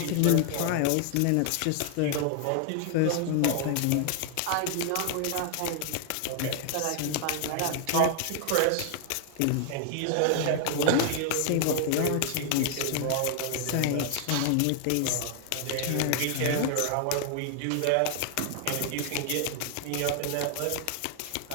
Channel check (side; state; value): both; different; correlation 0.00